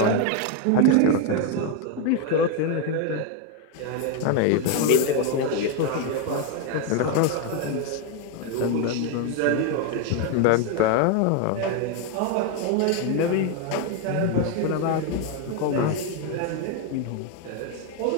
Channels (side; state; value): both; different; correlation 0.01